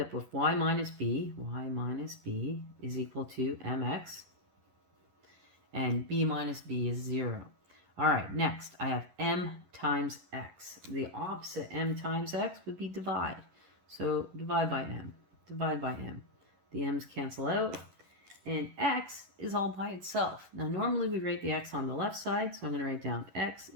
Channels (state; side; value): late; left; 11 ms